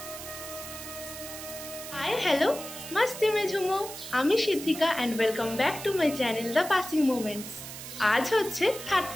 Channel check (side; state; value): right; noise; hiss, 11 dB below the sound